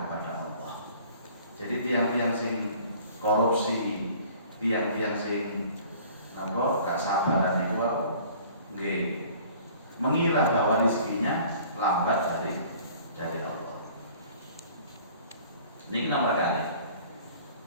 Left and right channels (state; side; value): inverted; both; correlation -0.51